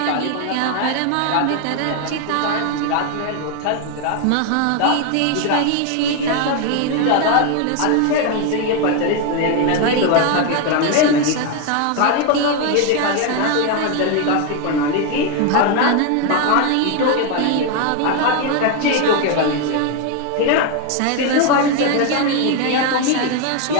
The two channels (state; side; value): different; both; correlation 0.01